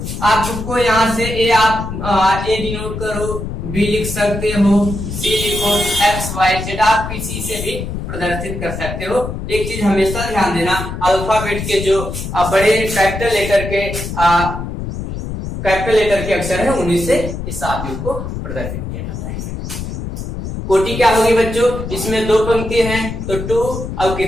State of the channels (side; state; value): left; noise; rumble, 6 dB below the sound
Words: आपको यहाँ से ए आप ए डिनोट करो, बी लिख सकते हो, सी लिखो, एक्स वाई जेड आप किसी से भी प्रदर्शित कर सकते हो। एक चीज हमेशा ध्यान देना, अल्फाबेट के जो बड़े कैपिटल लेटर के अक्षर है उन्हीं से इस आव्यूह को प्रदर्शित किया जाता है। कोटि क्या होगी बच्चों, इसमें 2 पंक्ति हैं तो 2, अब